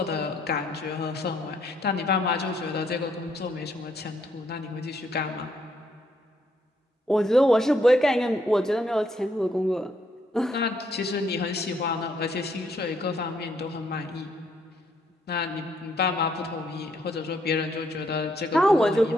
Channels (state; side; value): normal; both; correlation 0.72